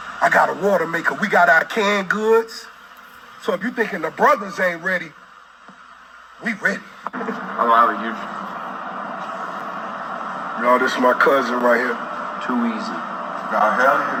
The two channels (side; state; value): both; identical; correlation 1.00